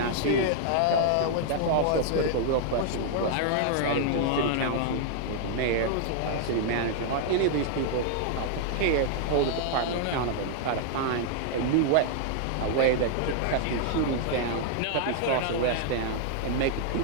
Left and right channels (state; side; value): different; both; correlation -0.01